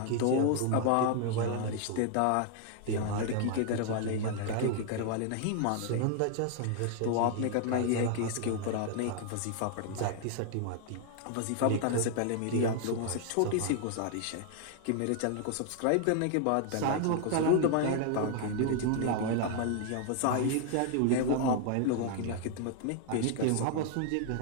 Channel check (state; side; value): different; both; correlation 0.00